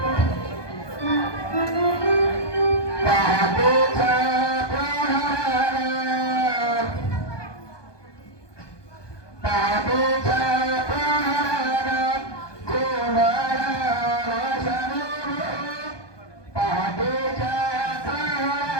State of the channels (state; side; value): late; right; 1.2 ms